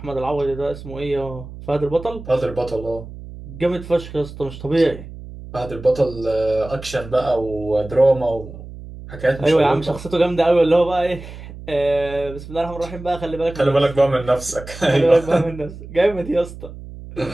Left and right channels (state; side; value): noise; right; hum, 14 dB below the sound